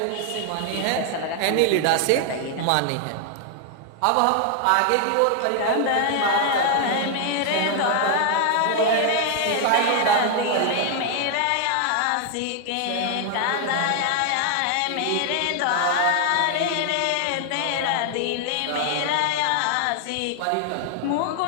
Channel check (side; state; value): both; different; correlation 0.00